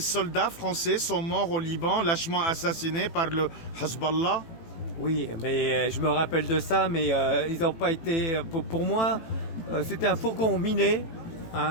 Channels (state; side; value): late; right; 18 ms